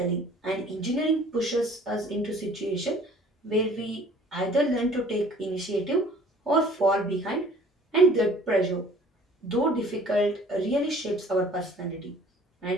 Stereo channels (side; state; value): both; normal; correlation 0.52